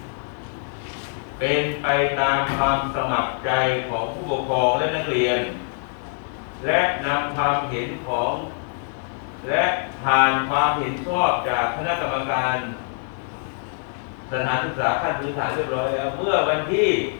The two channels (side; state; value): right; silent; 63 dB below the other